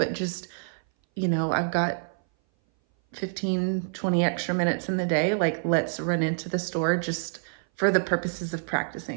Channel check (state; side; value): silent; left; 58 dB below the other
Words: just, I've got 15, 20 extra minutes in the day. Like, let's run into the store just for the purposes of